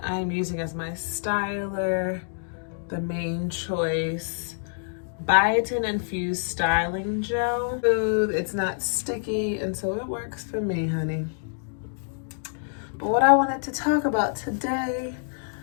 I'm using as my styler the Main Choice biotin infused styling gel. It's not sticky, and so it works for me, honey. But what I wanted to talk about today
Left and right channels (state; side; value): silent; right; digital silence